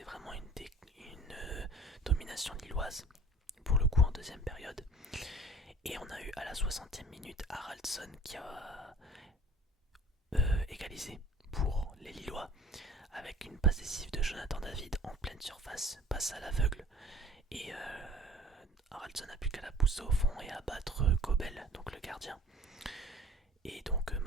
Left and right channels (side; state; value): both; normal; correlation 0.48